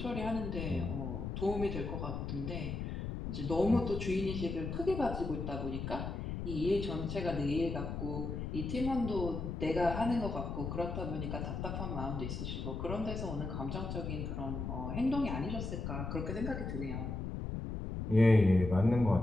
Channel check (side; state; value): left; noise; rumble, 4 dB below the sound